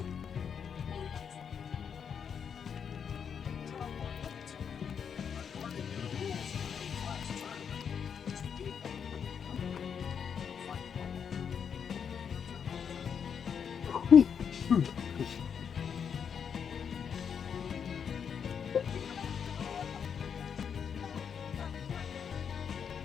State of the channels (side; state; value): right; quieter; 7.2 dB